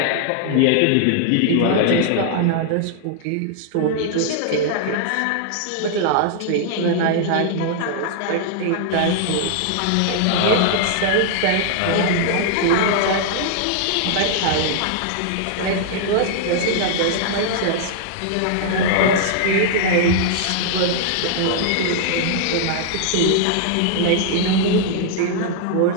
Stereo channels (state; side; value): different; both; correlation -0.01